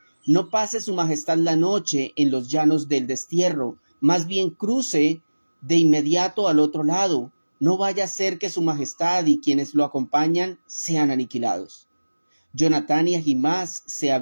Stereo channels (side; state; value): both; inverted; correlation -1.00